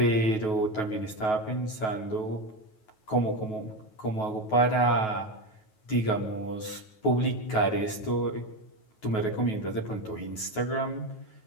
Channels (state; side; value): late; right; 9.3 ms